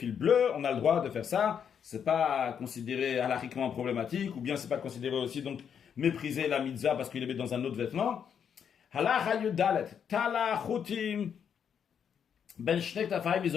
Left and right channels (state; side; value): quieter; right; 7.8 dB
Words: bleus, on a le droit de faire ça, c'est pas considéré halakhiquement problématique, ou bien c'est pas considéré aussi donc mépriser la mitzvah parce qu'il les met dans un autre vêtement. Halacha yudalet, tala chutim, ben shnek tafayim